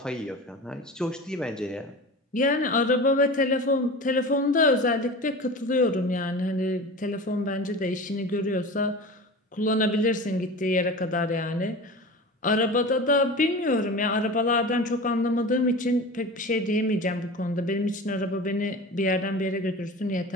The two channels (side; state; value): both; normal; correlation 0.33